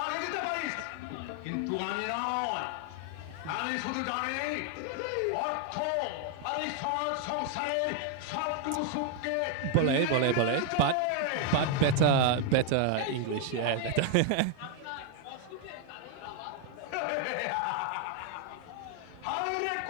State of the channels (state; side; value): different; both; correlation 0.01